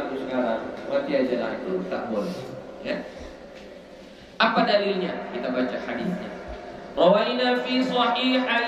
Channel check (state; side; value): identical; both; correlation 1.00